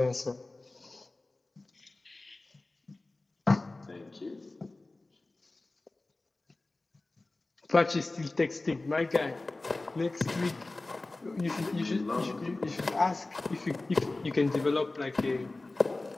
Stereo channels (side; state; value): right; quieter; 3.1 dB